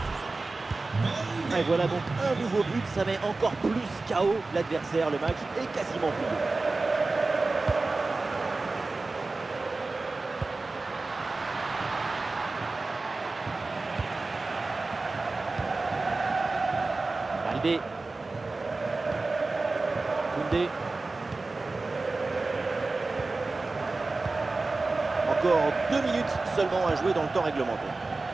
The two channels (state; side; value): quieter; left; 3.5 dB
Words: Et voilà donc un nouveau but, ça met encore plus KO l'adversaire. Le match est quasiment plié. Baldé. Koundé. Encore 2 minutes seulement à jouer dans le temps réglementaire.